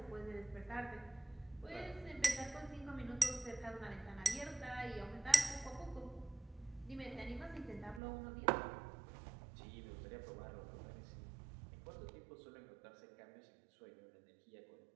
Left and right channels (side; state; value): left; drops out; at 8.0 s